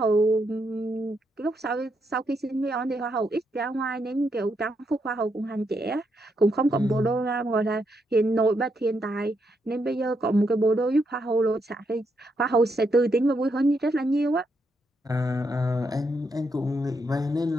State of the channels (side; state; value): both; normal; correlation 0.79